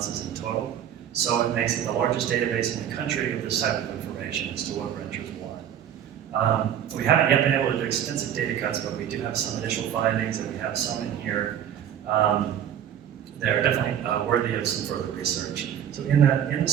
in total. So it makes it the largest database in the country of this type of information as to what renters want. We haven't yet been able to do extensive data cuts, but we do have some initial findings, and we have some in here. They're definitely worthy of some further research. So in the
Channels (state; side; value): quieter; left; 9.7 dB